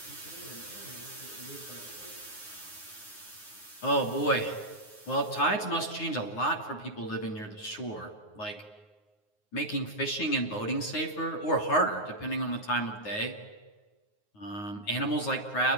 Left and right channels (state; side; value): late; right; 9.5 ms